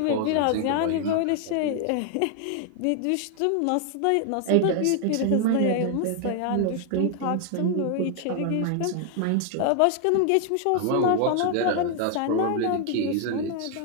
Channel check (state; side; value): different; both; correlation 0.00